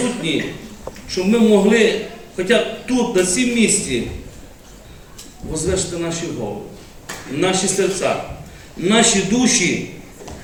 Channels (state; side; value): identical; both; correlation 1.00